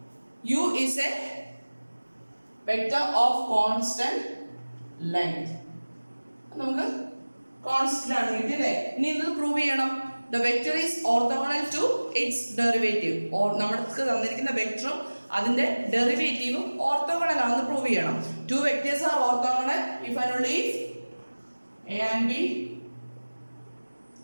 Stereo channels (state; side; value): inverted; both; correlation -1.00